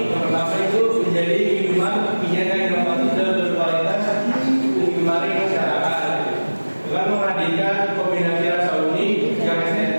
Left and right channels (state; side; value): inverted; both; correlation -1.00